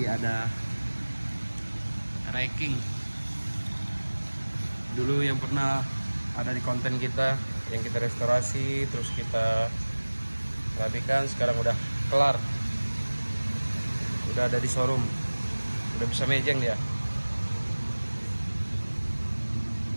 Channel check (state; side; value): inverted; both; correlation -1.00